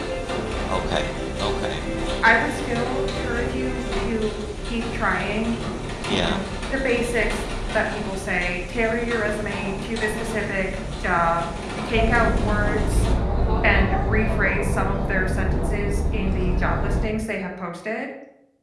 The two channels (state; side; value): identical; both; correlation 1.00